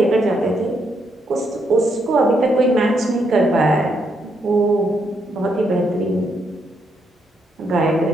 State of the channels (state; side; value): normal; both; correlation 0.77